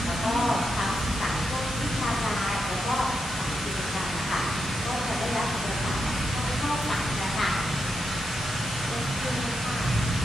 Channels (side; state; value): both; normal; correlation 0.84